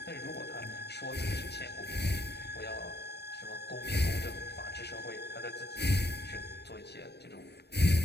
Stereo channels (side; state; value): right; late; 0.48 ms